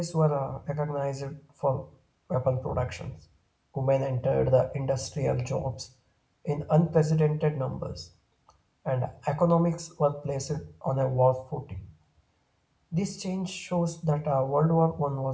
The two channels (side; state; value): both; identical; correlation 1.00